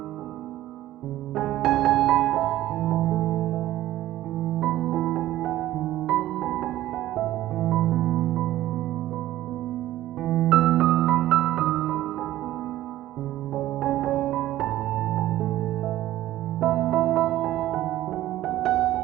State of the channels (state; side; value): quieter; left; 14.5 dB